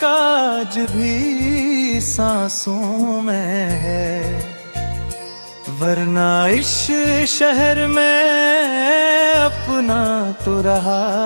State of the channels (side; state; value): both; inverted; correlation -1.00